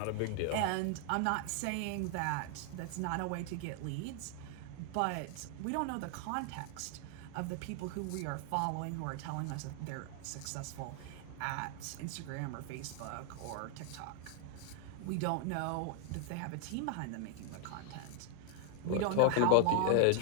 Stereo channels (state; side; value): different; both; correlation 0.00